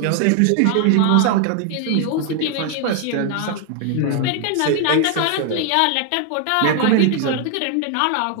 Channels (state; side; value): different; both; correlation 0.00